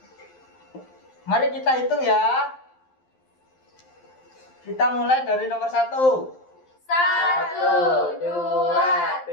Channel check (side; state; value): right; late; 12 ms